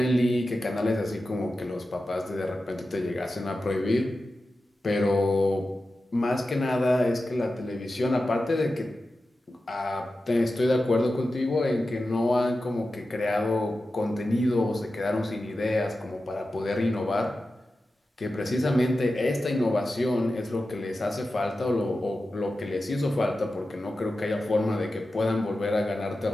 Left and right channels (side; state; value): both; normal; correlation 0.92